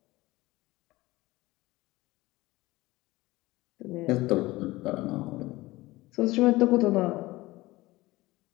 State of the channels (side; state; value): right; quieter; 19.5 dB